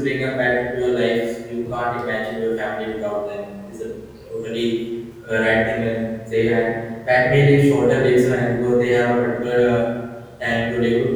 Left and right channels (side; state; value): both; identical; correlation 1.00